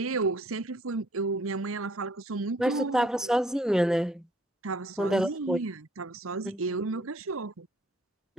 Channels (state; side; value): normal; both; correlation 0.60